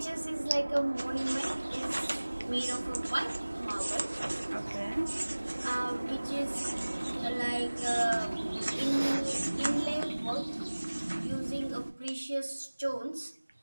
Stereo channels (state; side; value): inverted; both; correlation -1.00